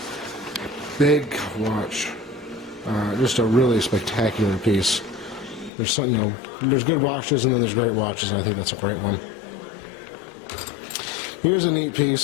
Big watch. Just a really spectacular piece. There's some, there's good watches and then there's great watches, and I think that's a great one. Here's a neat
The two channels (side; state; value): right; drops out; at 5.7 s